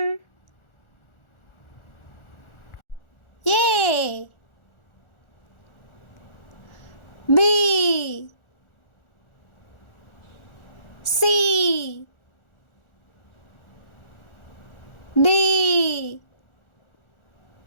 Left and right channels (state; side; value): late; right; 1.4 ms